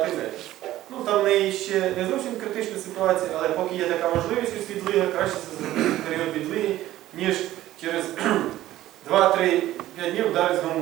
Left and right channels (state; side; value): quieter; left; 14.6 dB